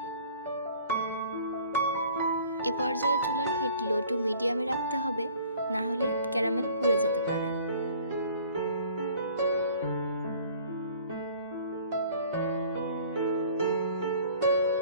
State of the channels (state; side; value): inverted; both; correlation -0.51